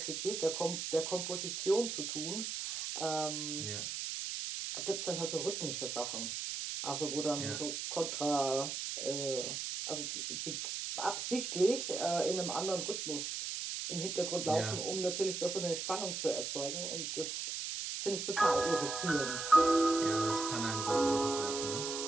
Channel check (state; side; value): noise; right; hiss, 4 dB below the sound